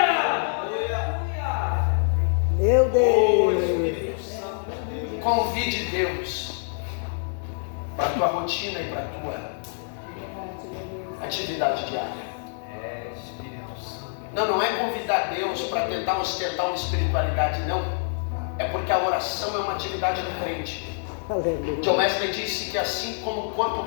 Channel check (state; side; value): silent; right; digital silence